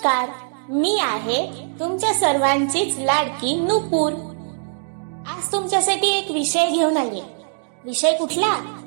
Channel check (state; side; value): silent; left; digital silence